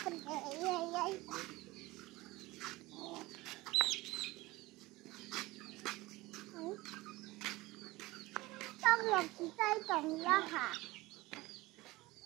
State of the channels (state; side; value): quieter; left; 20.3 dB